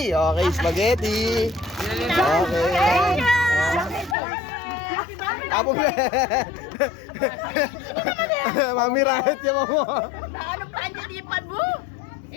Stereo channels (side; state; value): right; drops out; at 4.2 s